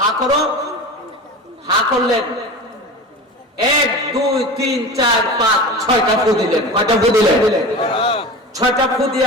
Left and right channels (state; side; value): normal; both; correlation 0.31